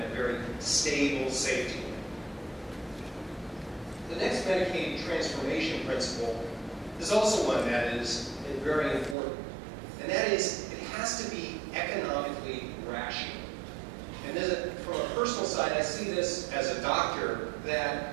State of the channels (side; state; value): left; drops out; at 9.2 s